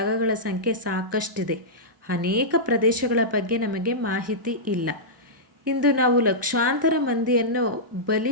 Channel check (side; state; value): both; normal; correlation -0.13